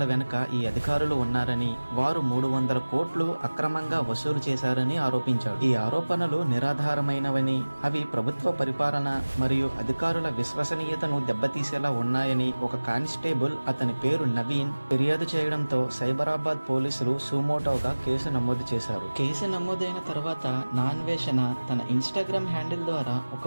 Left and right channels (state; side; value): inverted; both; correlation -1.00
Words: వెనుక ఈ అధికారులు ఉన్నారని, వారు 300 కోట్లు అక్రమంగా వసూలు చేశారని ఆరోపించాడు. ఈ ఆరోపణలు నిరాధారమైనవని, అవి ప్రభుత్వ పరిపాలన మరియు అధికారుల విశ్వసనీయతను దెబ్బతీసేలా ఉన్నాయని ఒక కానిస్టేబుల్, అతని పేరు నవీన్, ఫిర్యాదు చేయడంతో సైబరాబాద్ పోలీసులు సుమోటోగా కేసు నమోదు చేశారు. కేసు నమోదైన తర్వాత నా అన్వేషణ తన ఇన్స్టాగ్రామ్ హ్యాండిల్ ద్వారా